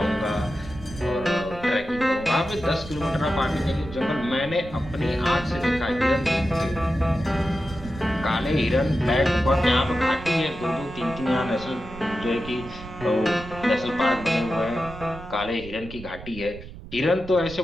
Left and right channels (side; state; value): right; noise; rumble, 14 dB below the sound